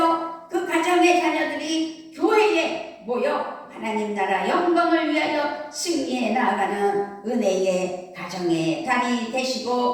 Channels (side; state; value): both; identical; correlation 1.00